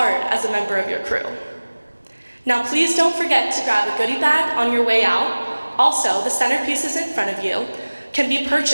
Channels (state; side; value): inverted; both; correlation -1.00